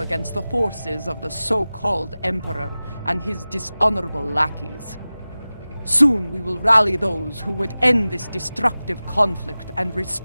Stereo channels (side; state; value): both; inverted; correlation -0.97